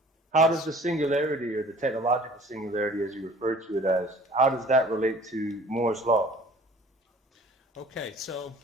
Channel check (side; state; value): both; normal; correlation 0.49